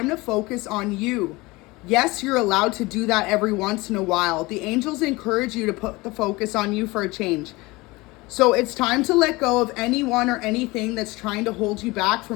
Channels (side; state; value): right; quieter; 22.4 dB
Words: to focus on you. Yes, you're allowed to do that every once in a while. The angels encourage you to put the focus on you for a change. So it's time to let go of anyone or anything that's trying to hold you back